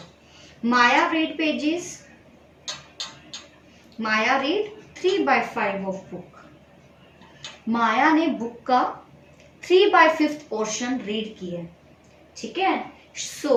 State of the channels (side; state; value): both; identical; correlation 1.00